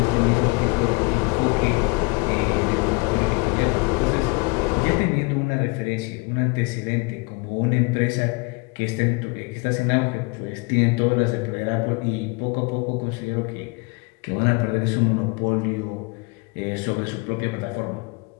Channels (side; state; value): right; quieter; 29.1 dB